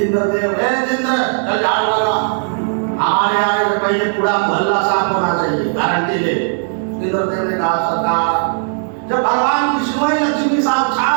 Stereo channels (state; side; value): silent; left; digital silence